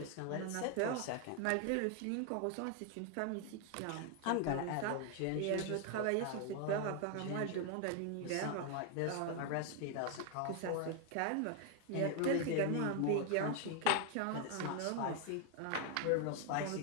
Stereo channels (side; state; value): both; different; correlation 0.00